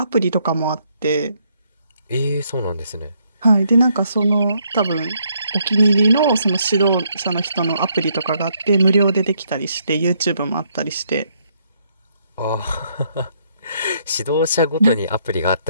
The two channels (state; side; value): inverted; both; correlation -0.72